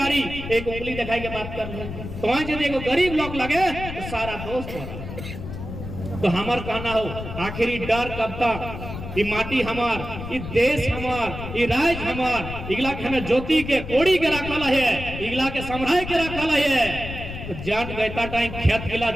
एक उंगली दिखाई के बात कर ले, तो वहां यदि एगो गरीब लोग लगे तो सारा दोस्त हो। तो हमार कहना हो आखिरी डर कब तक, ये माटी हमार, ये देश हमार, ये राज्य हमार, इगला के हमें ज्योति के कोड़ी के रखल है, इगला के संभराय के रखल है। तो जान गैता टाइम खेत गिला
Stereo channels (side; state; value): left; noise; rumble, 9 dB below the sound